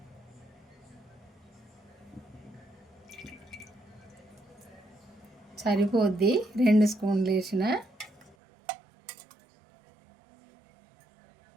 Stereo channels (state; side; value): drops out; left; at 8.3 s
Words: సరిపోద్ది 2 స్పూన్లు వేసిన.